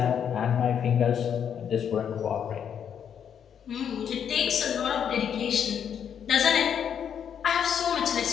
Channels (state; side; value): quieter; right; 8.3 dB